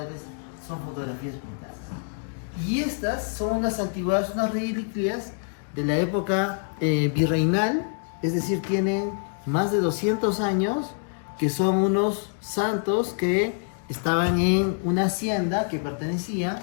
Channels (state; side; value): silent; right; 60 dB below the other